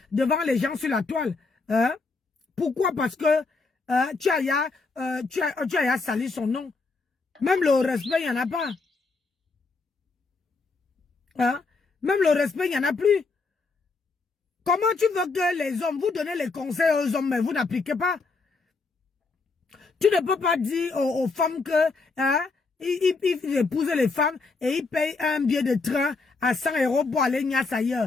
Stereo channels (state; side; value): quieter; right; 4.0 dB